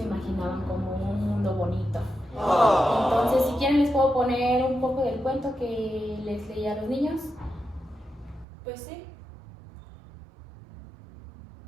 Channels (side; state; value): left; drops out; at 8.5 s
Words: imaginaban como un mundo bonito. Entonces, si quieren les puedo poner un poco del cuento que les leí a los niños. Pues sí.